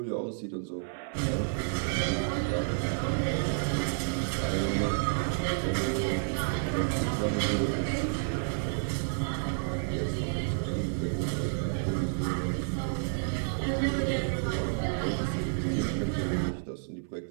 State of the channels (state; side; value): silent; left; 58 dB below the other